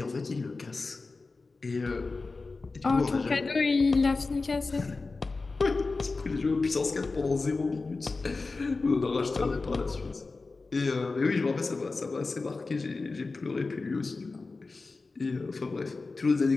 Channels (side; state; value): right; quieter; 3.8 dB